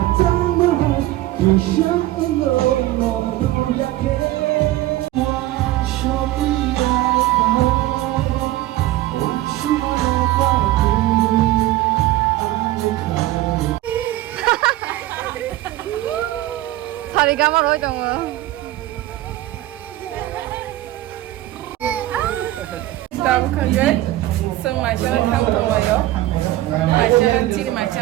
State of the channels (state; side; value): quieter; left; 15.9 dB